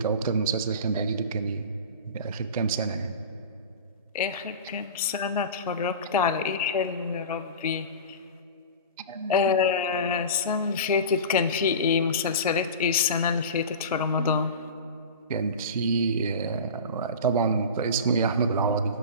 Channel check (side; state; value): both; inverted; correlation -0.31